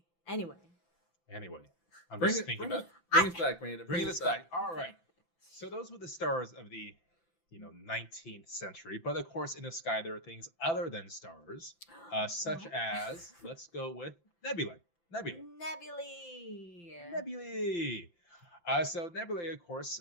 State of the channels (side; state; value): right; late; 15 ms